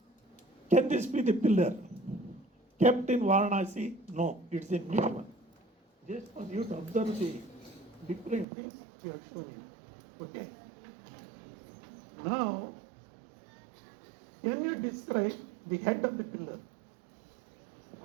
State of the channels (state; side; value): drops out; left; at 8.5 s